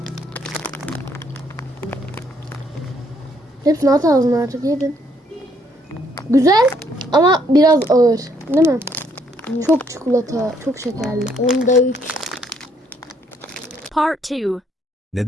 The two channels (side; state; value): both; normal; correlation 0.69